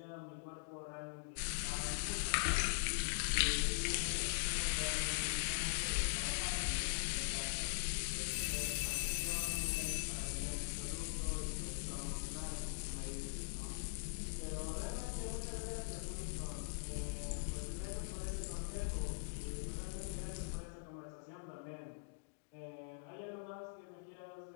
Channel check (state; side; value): silent; right; digital silence